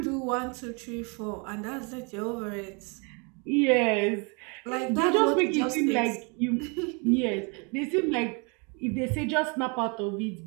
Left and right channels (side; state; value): left; quieter; 33.3 dB